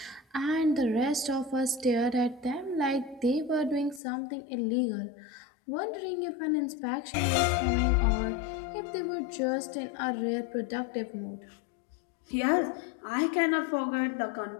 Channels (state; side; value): drops out; right; at 4.0 s